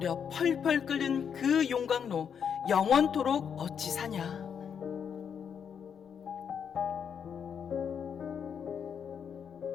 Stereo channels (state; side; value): quieter; right; 7.4 dB